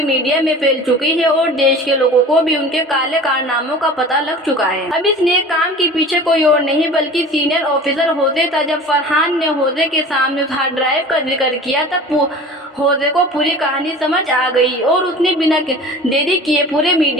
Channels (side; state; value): both; normal; correlation 0.39